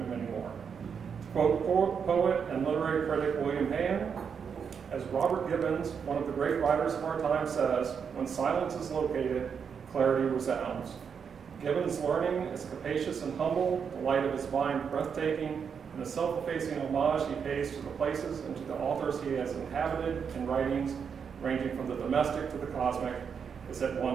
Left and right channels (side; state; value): left; quieter; 6.7 dB